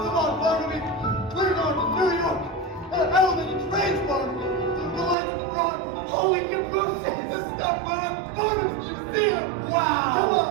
on, Barnaby, we're going to New York. Elevated trains, Barnaby. The lights of Broadway. Holy cabooses! The stuff on Barnum's Museum. Wow!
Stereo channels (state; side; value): drops out; left; at 5.2 s